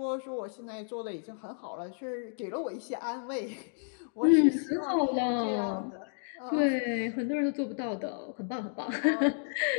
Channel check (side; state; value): right; silent; digital silence